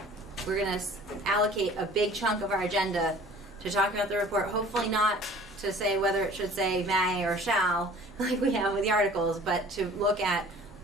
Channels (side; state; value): both; normal; correlation 0.48